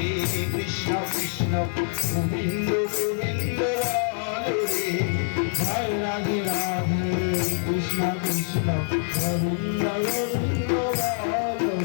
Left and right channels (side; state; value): right; silent; 56 dB below the other